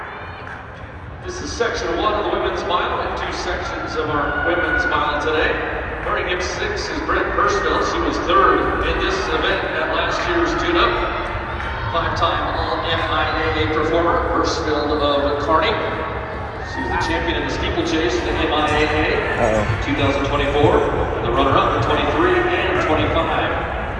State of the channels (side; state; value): both; identical; correlation 1.00